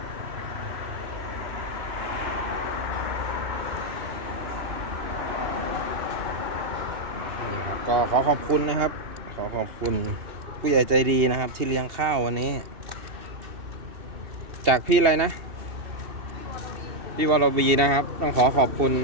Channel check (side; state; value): left; late; 2.8 ms